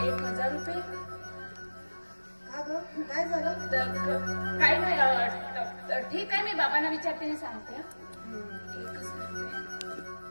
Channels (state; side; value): inverted; both; correlation -1.00